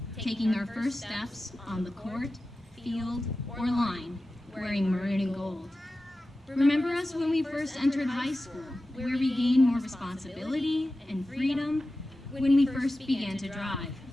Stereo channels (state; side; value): normal; both; correlation 0.94